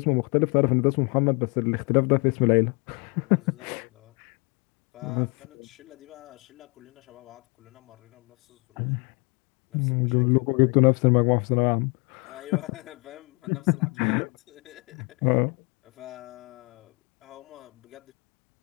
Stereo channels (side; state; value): right; quieter; 32.5 dB